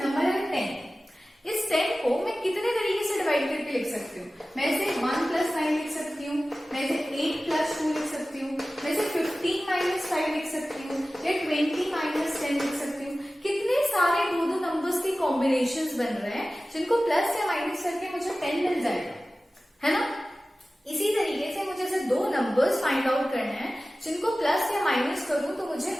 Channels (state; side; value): normal; both; correlation 0.96